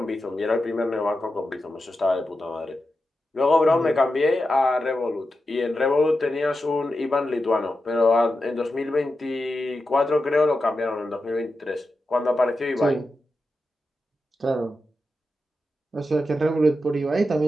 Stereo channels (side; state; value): both; normal; correlation 0.90